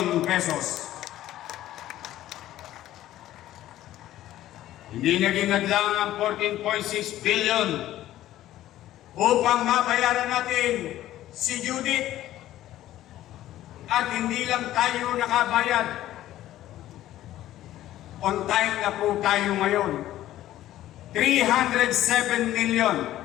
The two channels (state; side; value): quieter; right; 13.8 dB